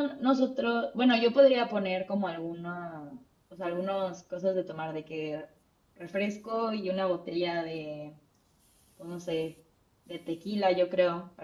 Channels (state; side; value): identical; both; correlation 1.00